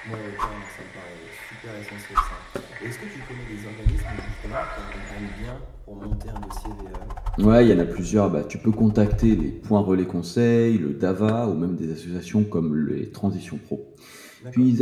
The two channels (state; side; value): identical; both; correlation 1.00